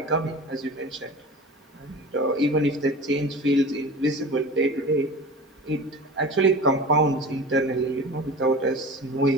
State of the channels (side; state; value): both; normal; correlation 0.35